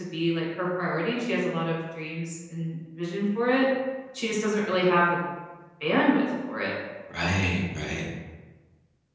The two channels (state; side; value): identical; both; correlation 1.00